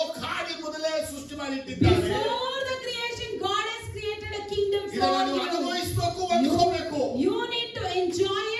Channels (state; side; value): identical; both; correlation 1.00